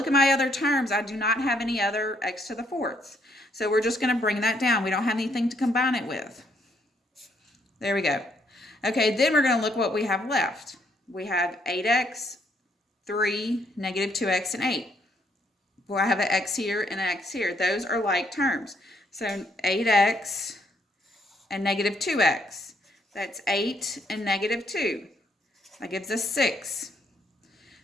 at my other terms, I do not have any other x to the 4th. So we're just going to bring that down. We don't have anything to combine it with. There we go. Okay, then we're going to look what we have left. We have 8x, 3, negative 2x, and 8. Well, I have an x here and an x here. Those are like terms. So 8x and negative 2x. That's 8 and negative 2. That gives us 6.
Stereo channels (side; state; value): both; normal; correlation 0.71